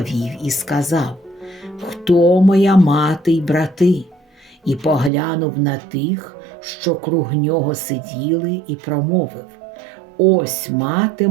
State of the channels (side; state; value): left; drops out; at 5.1 s